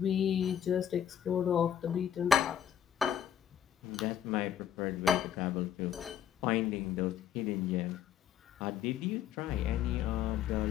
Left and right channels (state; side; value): quieter; right; 9.2 dB